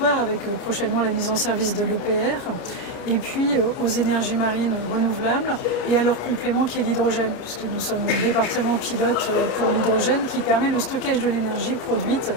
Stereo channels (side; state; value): right; late; 29 ms